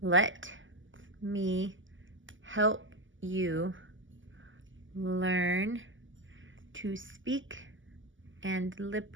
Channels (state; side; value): late; left; 0.56 ms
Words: let me help you learn to speak and lip